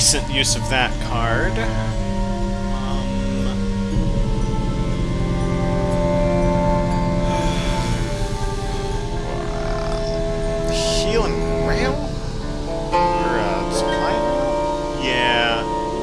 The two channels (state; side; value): identical; both; correlation 1.00